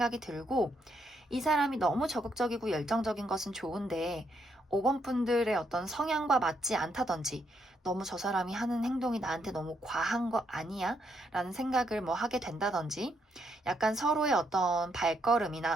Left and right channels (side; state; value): both; normal; correlation 0.76